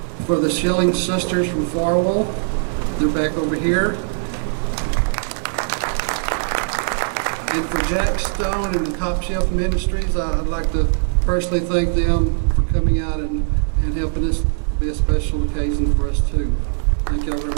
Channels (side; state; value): left; silent; 66 dB below the other